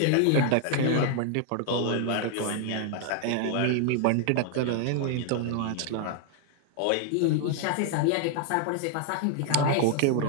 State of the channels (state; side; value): different; both; correlation 0.00